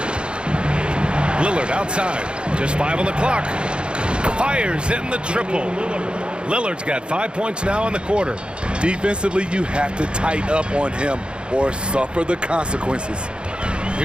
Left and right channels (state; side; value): late; left; 0.054 ms